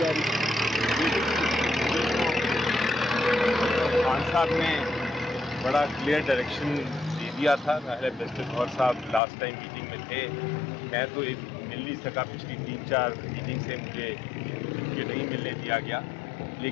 رہی؟ خان صاحب نے بڑا کلیئر ڈائریکشن دے دیا تھا. ظاہر برسٹر گوہر صاحب لاسٹ ٹائم میٹنگ میں تھے، میں تو مل نہیں سکا، پچھلی 3-4 میٹنگ سے مجھے نہیں ملنے دیا گیا.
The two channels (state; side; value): drops out; right; at 9.2 s